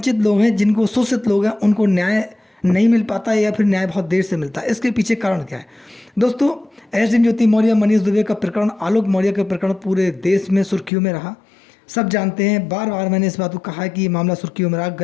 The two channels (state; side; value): drops out; right; at 10.9 s